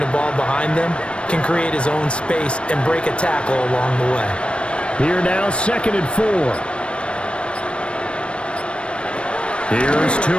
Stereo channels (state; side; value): late; right; 0.058 ms